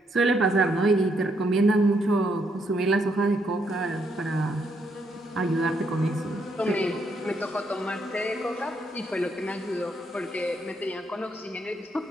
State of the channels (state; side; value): normal; both; correlation 0.75